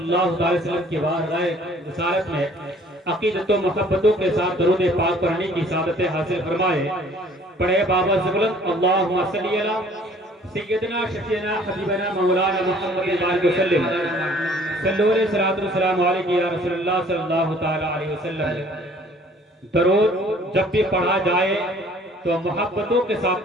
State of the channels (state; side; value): normal; both; correlation 0.55